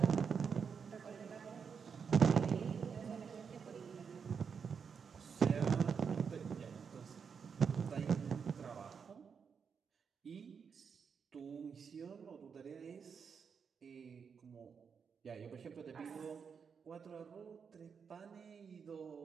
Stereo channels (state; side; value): quieter; left; 6.3 dB